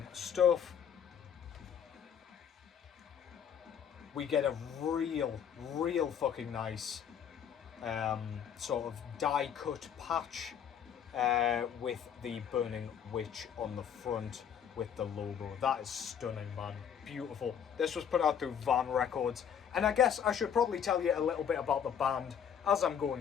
stuff. We get a real fucking nice sort of die cut patch with the burning witch on the front with the logo. That is stunning, man. Beautiful. This was put out through Van Records, and I guess I should probably tell you a little bit about the band as I'm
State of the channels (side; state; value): right; quieter; 8.3 dB